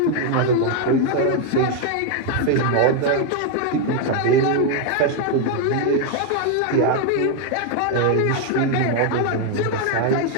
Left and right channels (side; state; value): both; different; correlation 0.01